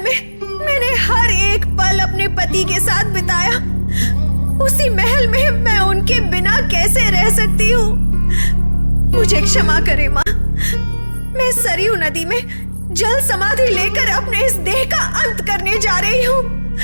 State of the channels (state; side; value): inverted; both; correlation -1.00